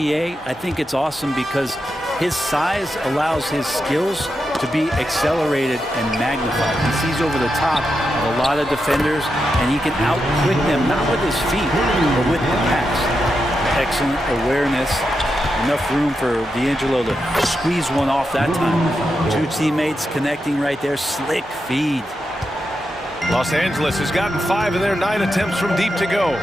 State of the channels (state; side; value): normal; both; correlation 0.86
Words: I think it's awesome because his size allows his skills to be accelerated and magnified. He sees over the top of a lot of defenders, and he can out-quick them, not with his feet, but with the pass. Excellent awareness. Enough room for D'Angelo to squeeze one off that time. Two teammates connecting right there. Slick feed. Los Angeles has gotten 5 of their 9 attempts from deep to go.